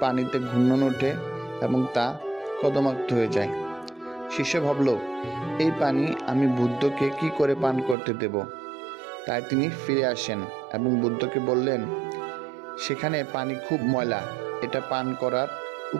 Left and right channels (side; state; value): left; drops out; at 8.0 s